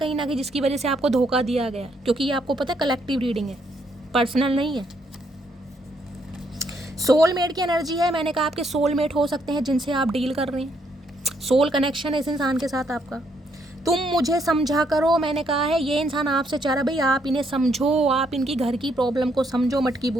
ना कहीं जिसकी वजह से आपको धोखा दिया गया, क्योंकि ये आपको पता है कलेक्टिव रीडिंग है, पर्सनल नहीं है। सोलमेट की एनर्जी है, मैंने कहा आपके सोलमेट हो सकते हैं जिनसे आप डील कर रहे हैं। सोल कनेक्शन है इस इंसान के साथ आपका। तुम मुझे समझा करो, मैंने कहा है ये इंसान आपसे चाह रहा भाई आप इन्हें समझो, आप इनकी घर की प्रॉब्लम को समझो मटकी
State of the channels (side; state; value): both; normal; correlation 0.73